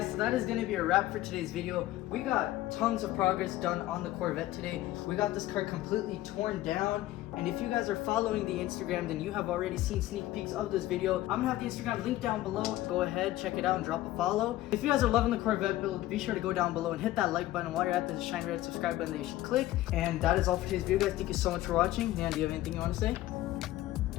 so that is going to be a wrap for today's video. We got tons of progress done on the Corvette today. We got this car completely torn down, and if you guys are following the Instagram, then you have already seen sneak peeks of this video. I'm going to have the Instagram link down below. Go ahead, check it out, and drop a follow. If you guys are loving the Corvette build, be sure to go down below and hit that like button. While you're at, there's a shiny red subscribe button that you should click. And that is all for today's video, guys. Thank you so much for watching. Dan, do you have anything you want to say?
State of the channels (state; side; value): quieter; right; 15.6 dB